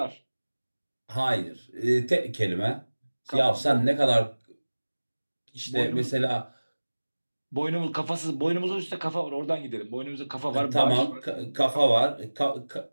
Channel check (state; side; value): inverted; both; correlation -1.00